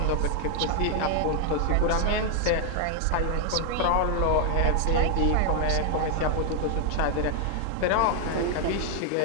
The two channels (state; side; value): different; both; correlation 0.00